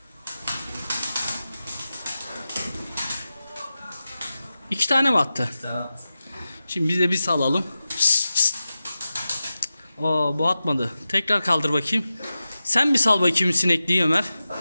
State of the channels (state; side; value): inverted; both; correlation -0.93